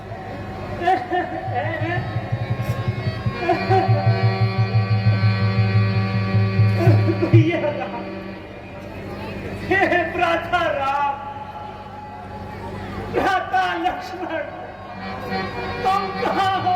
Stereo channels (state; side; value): identical; both; correlation 1.00